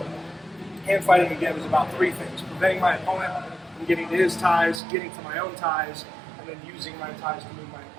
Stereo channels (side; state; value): left; drops out; at 4.8 s